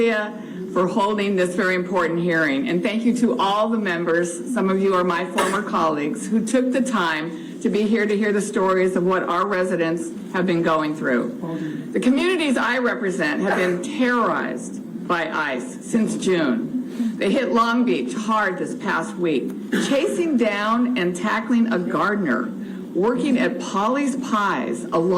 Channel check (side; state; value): both; identical; correlation 1.00